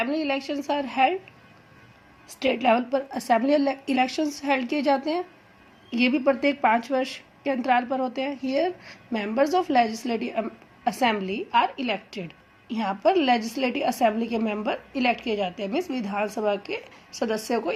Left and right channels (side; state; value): both; identical; correlation 1.00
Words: elections are held. State level पर assembly elections held किए जाते हैं. ये भी प्रत्येक 5 वर्ष के अंतराल पर होते हैं. Here, members of legislative assembly are elected. यहाँ पर लेजिस्लेटिव असेंबली के मेंबर इलेक्ट किए जाते हैं, मीन्स विधानसभा के सदस्यों को